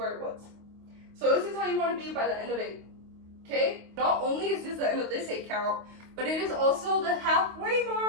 it was. So this is how you want to be by the end of 8. Okay? Not only is this the end of this 8 count, but it is also the halfway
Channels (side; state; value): left; late; 25 ms